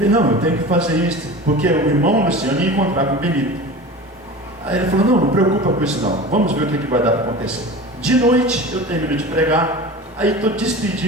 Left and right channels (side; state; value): both; normal; correlation 0.34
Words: não, eu tenho que fazer isso, porque o irmão Luciano ia encontrar com o Benito. Aí ele falou: não preocupa com isso não, vamos ver o que vai dar para acontecer. De noite, eu termino de pregar, aí estou